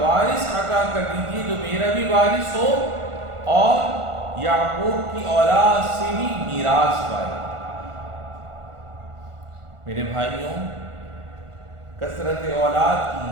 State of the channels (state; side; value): late; left; 1.4 ms